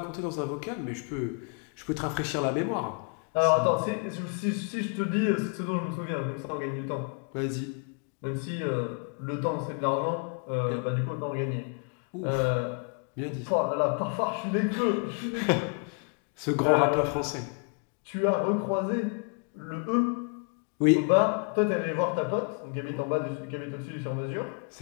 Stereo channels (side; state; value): right; quieter; 37.3 dB